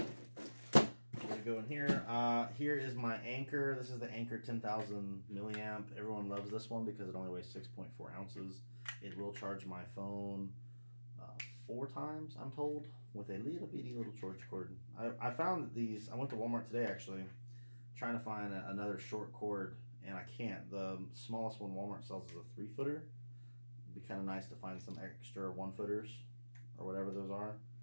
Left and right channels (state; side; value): inverted; both; correlation -1.00